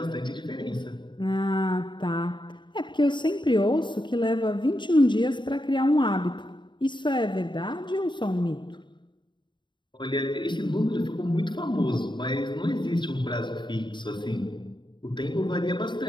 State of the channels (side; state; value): right; late; 0.23 ms